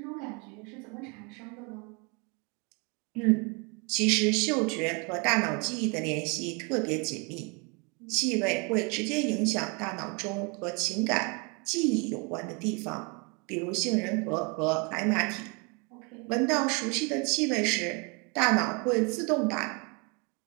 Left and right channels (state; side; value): quieter; left; 32.0 dB